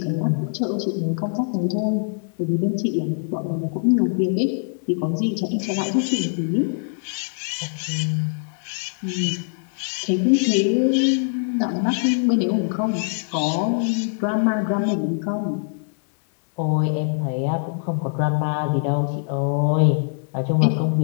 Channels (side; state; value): right; silent; digital silence